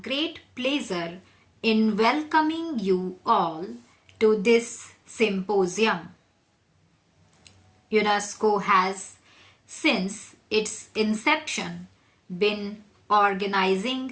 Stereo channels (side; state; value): both; identical; correlation 1.00